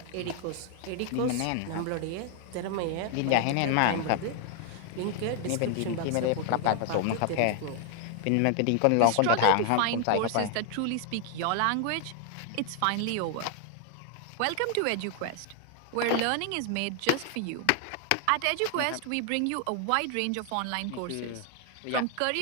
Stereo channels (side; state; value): both; different; correlation 0.00